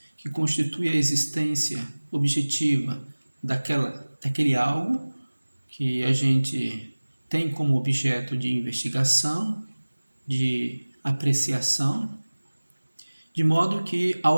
que constitui a existência objetiva daquele algo que a gente tem como objeto de investigação, de apreciação, de modo que,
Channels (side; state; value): both; inverted; correlation -1.00